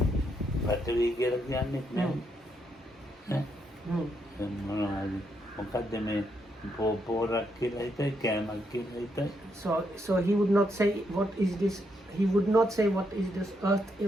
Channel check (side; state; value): both; normal; correlation 0.78